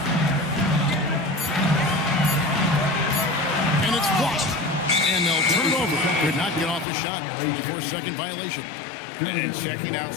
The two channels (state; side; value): drops out; right; at 6.9 s